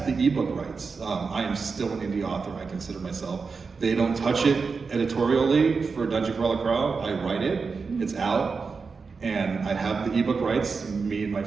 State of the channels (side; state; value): left; quieter; 4.9 dB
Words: the ebook rights. I am still an indie author, I consider myself. They don't touch it editorially for Dungeon Crawler Crow. I write it, it's out, and I have the ebook rights. Me and my